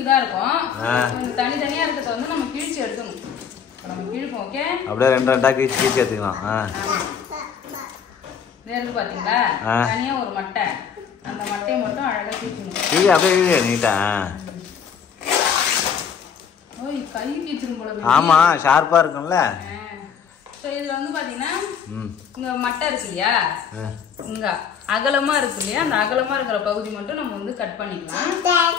தான் இருக்கும். தனித்தனியா இருக்கிறத வந்து நம்ம கிழிச்சு எடுக்கணும். நம்ம கிழிப்போம். ஓகே, அப்படியே ரெண்டு ரெண்டா கிழிச்சு எடுத்துக்கலாம். இருக்கு பாத்தீங்களா, தனியா ஒரு மட்டை. அந்த மட்டையை மட்டும் அழகா கிழிக்கணும். இது அப்படியே நீட்டா. ஓய், கை கிழிச்சிரும் போல. ஆமா, ஷார்ப்பா இருக்கும்ல. இதுல வந்து பாத்தீங்கன்னா இங்க மட்டை இருக்கு இல்லையா, இங்க அகலமா இருக்கு இல்லையா, அந்த அகலமா இருக்கிற பகுதி மட்டும் நம்ம வந்து கட் பண்ணிக்கலாம்.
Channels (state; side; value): quieter; right; 7.3 dB